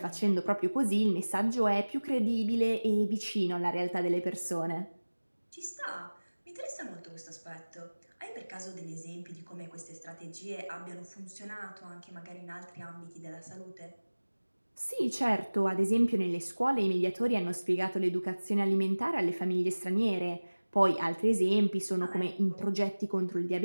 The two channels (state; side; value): inverted; both; correlation -1.00